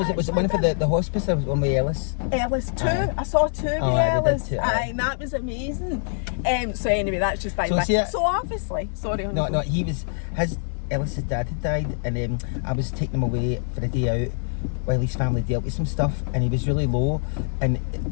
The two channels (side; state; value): right; silent; digital silence